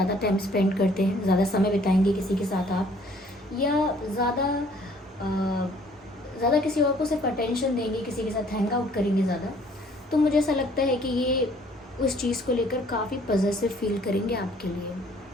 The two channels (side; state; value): both; normal; correlation 0.59